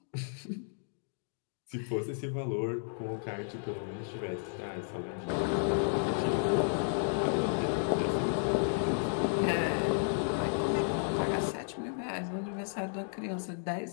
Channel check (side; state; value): right; silent; digital silence